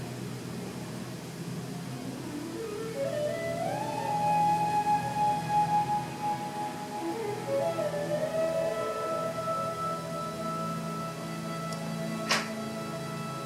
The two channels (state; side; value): identical; both; correlation 1.00